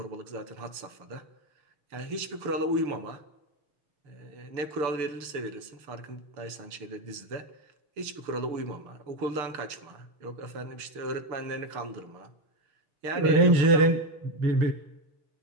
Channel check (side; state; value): left; late; 6.8 ms